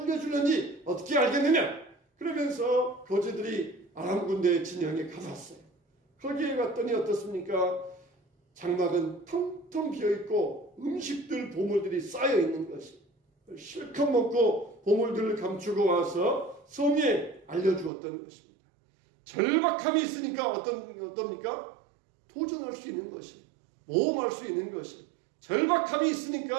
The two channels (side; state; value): left; drops out; at 17.9 s